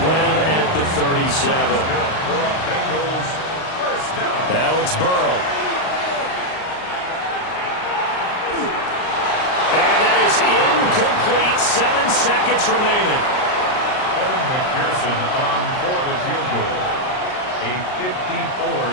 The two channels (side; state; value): right; late; 38 ms